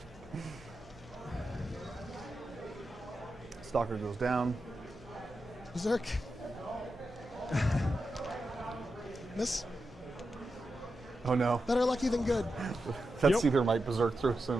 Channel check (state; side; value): normal; both; correlation 0.89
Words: Stalker goes down. Berserk. Miss. Oh no. Better lucky than good. That Yep. Seether might berserk through